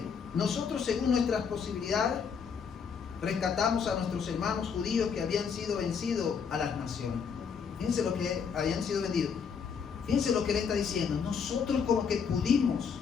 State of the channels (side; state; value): right; quieter; 6.5 dB